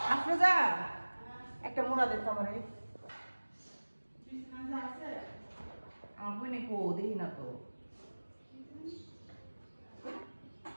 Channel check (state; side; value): inverted; both; correlation -1.00